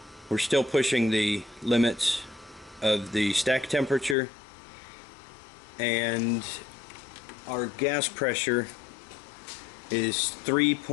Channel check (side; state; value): right; drops out; at 4.2 s